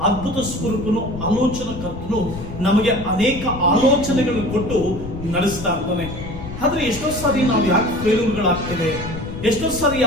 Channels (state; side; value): noise; left; rumble, 10 dB below the sound